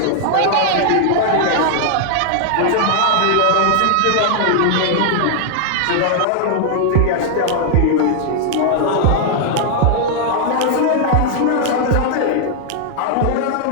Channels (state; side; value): different; both; correlation -0.01